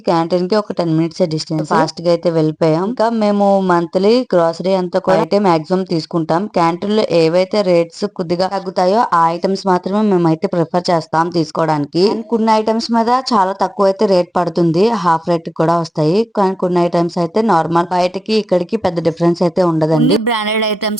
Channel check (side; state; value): both; normal; correlation 0.96